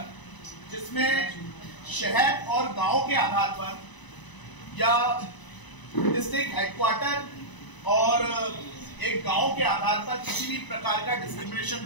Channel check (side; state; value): right; late; 1.0 ms